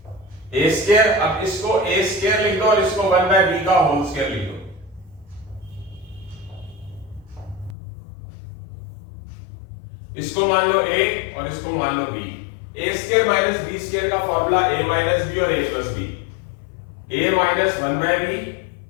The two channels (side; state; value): right; drops out; at 7.8 s